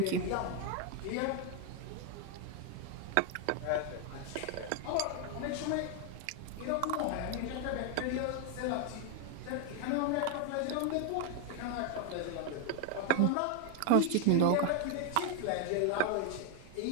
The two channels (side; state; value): both; different; correlation 0.01